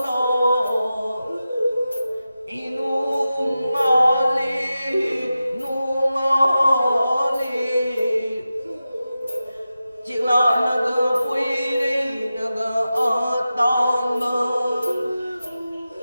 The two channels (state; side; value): inverted; both; correlation -0.93